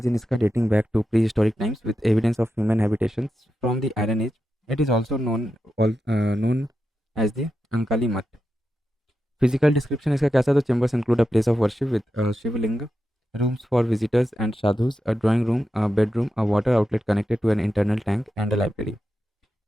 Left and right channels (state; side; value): normal; both; correlation 0.89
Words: इसका dating back to prehistoric times with evidence of human habitations from the iron age. It is also known as the Ankali Mat. Physical description इसका कैसा, तो chambers include a place of worship with a Shivalinga, rooms for visitors and sadhus, a drawing room, a bedroom, a water outlet connected to an internal tank and a library.